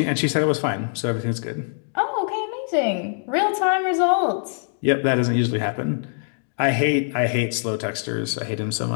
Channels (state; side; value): silent; right; digital silence